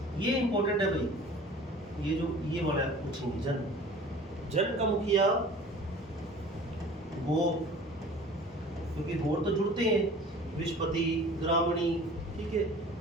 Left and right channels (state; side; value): normal; both; correlation 0.44